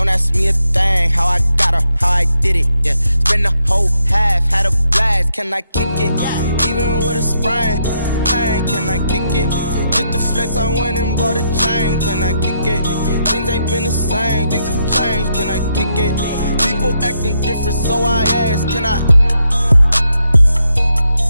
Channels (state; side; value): inverted; both; correlation -0.79